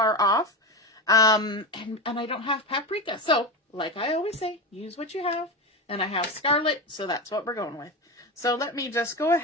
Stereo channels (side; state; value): both; normal; correlation 0.19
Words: off. And I don't have paprika. So, like I always say, use what you have. And I have Scarlet, so that's what we're going with. So let me just go